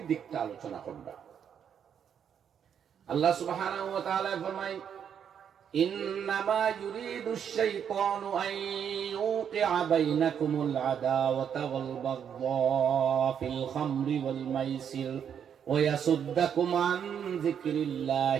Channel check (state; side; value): quieter; left; 8.2 dB